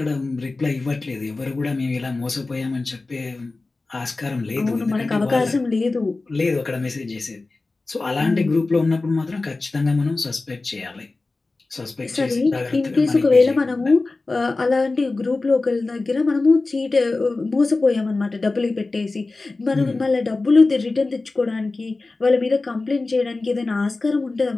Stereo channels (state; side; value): quieter; right; 3.5 dB